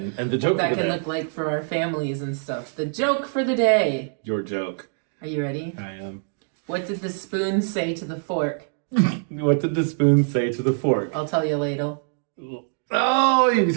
the joke what that can look like for our families and stuff. The joke for the day. Your joke. Are you ready? I am. What did the spoon say to the fork? What did the spoon say to the fork? I'll tell you later. Oh, you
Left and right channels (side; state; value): left; silent; digital silence